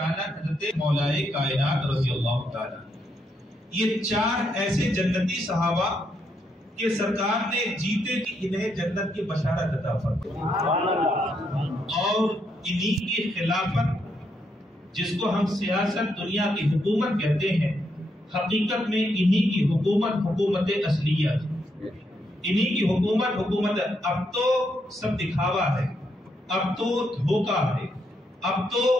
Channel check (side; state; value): both; normal; correlation 0.78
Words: حضرت مولائے کائنات رضی اللہ تعالیٰ. یہ 4 ایسے جنتی صحابہ کہ سرکار نے جیتے کہ انہیں جنت کی بشارت عطا فرمائی, اور انہی کی خلافت جس کو ہم سیاست دنیا کی حکومت کہتے ہیں, حقیقت میں انہی کی حکومت اصلیہ تھی. انہی کی حکومت. اب تو سب دکھاوا ہے, اب تو دھوکہ ہے, اب تو